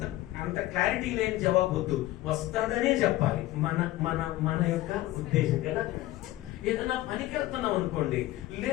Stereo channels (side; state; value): right; quieter; 16.5 dB